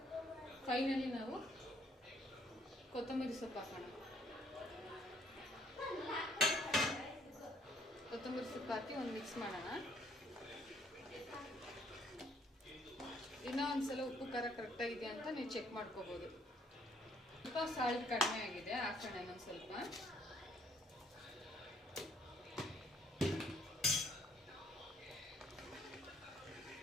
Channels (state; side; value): normal; both; correlation 0.65